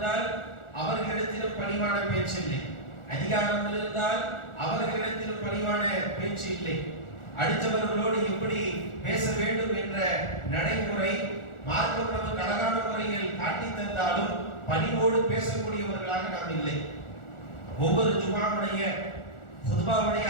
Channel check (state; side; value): late; right; 1.4 ms